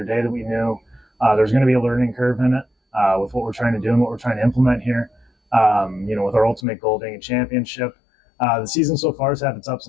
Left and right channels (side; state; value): right; drops out; at 6.6 s